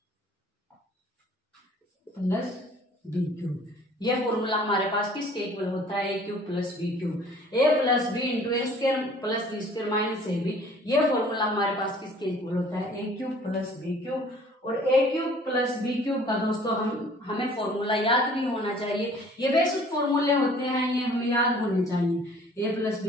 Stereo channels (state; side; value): normal; both; correlation 0.53